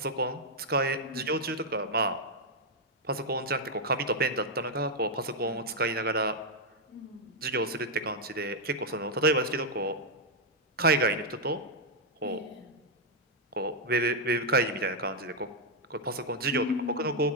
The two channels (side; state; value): both; normal; correlation -0.01